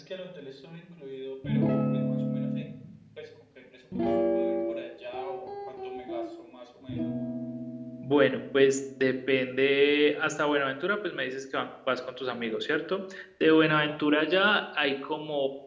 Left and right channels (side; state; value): both; identical; correlation 1.00